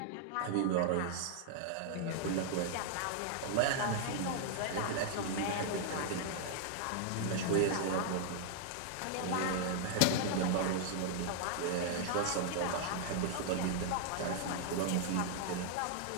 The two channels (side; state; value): both; different; correlation 0.00